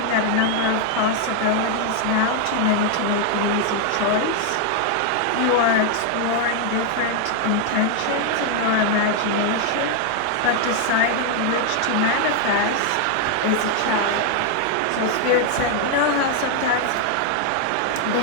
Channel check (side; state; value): both; different; correlation 0.00